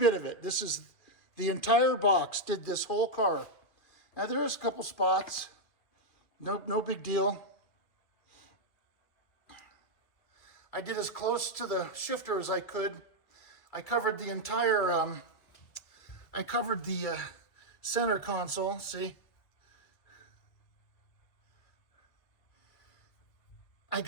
of it. This is the entire box, did this whole car. Now there's a couple spots, no big deal. I did as close to the shifter as I could. I covered the entire, I covered the center console, see? I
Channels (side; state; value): right; late; 2.4 ms